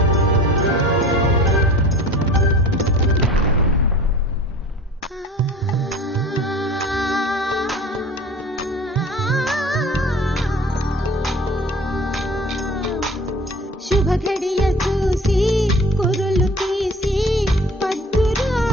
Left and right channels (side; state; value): both; normal; correlation 0.43